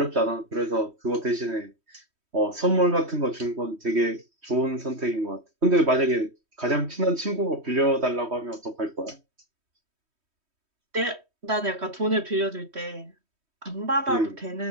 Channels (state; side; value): late; left; 3.1 ms